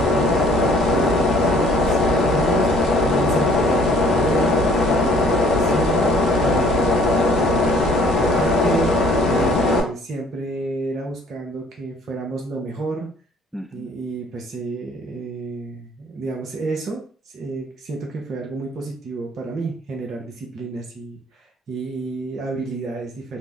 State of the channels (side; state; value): both; normal; correlation 0.57